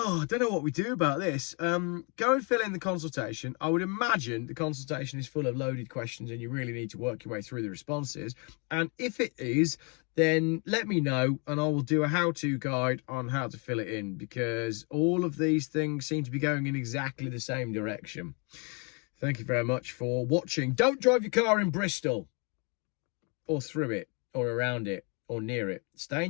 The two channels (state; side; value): quieter; right; 34.7 dB